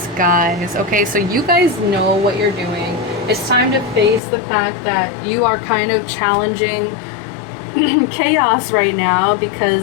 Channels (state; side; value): drops out; right; at 4.2 s